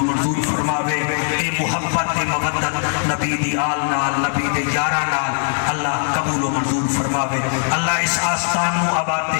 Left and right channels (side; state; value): right; silent; digital silence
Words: منظور فرماوے. اے محبت تے مودت نبی دی آل نال نبی دے یاراں نال اللہ قبول و منظور فرماوے. اللہ اس آستان نو آباد تے